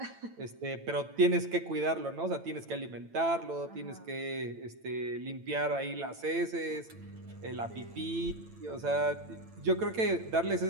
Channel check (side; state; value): left; late; 8.9 ms